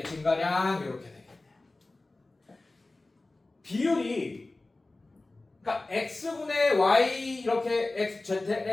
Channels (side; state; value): right; quieter; 3.1 dB